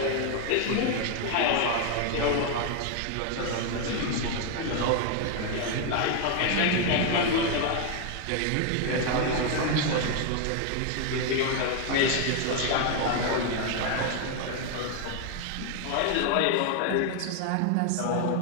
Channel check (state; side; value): different; both; correlation 0.01